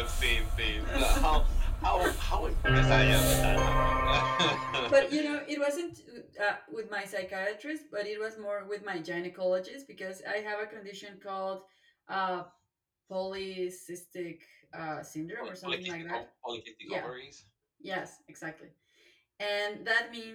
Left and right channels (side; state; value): both; identical; correlation 1.00